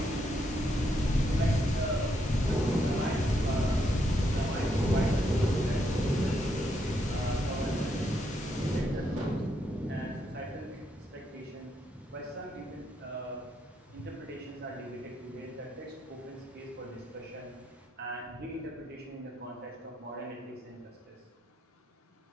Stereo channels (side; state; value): both; normal; correlation 0.78